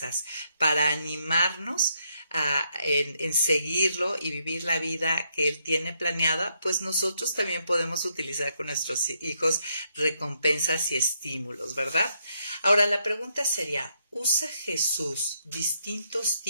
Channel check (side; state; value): both; inverted; correlation -0.76